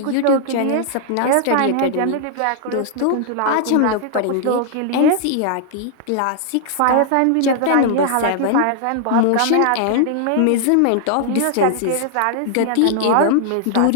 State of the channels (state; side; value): different; both; correlation -0.01